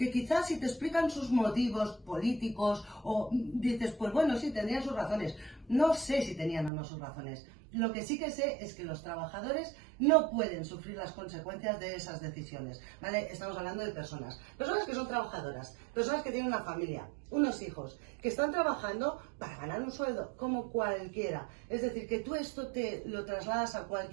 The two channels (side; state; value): left; drops out; at 6.7 s